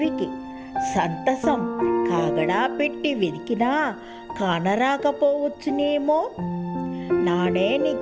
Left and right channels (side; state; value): both; identical; correlation 1.00